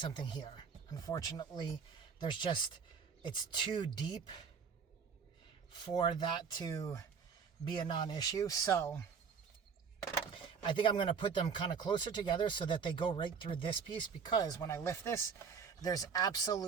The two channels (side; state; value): left; quieter; 6.2 dB